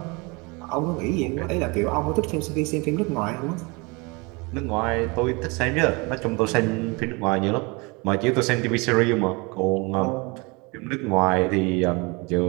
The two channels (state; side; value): quieter; left; 27.8 dB